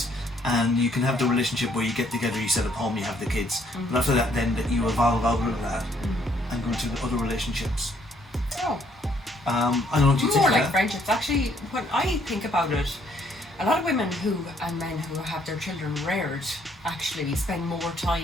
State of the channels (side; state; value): both; normal; correlation 0.67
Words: and you can have the relationship where you get together, you set up home, you have the kids. But after that, then that you evolve out of that and go into other relationships. Oh. I don't know what you think More of like that. friendships. Actually, when I think about it, a lot of women and men who have their children reared actually spend more